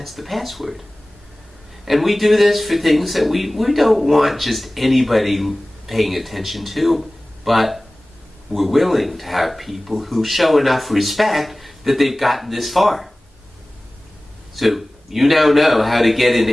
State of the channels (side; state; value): both; normal; correlation 0.98